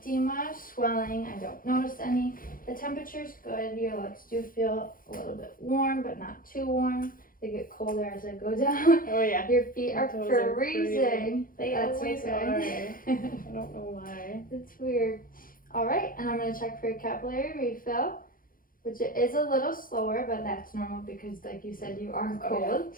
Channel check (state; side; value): late; right; 0.41 ms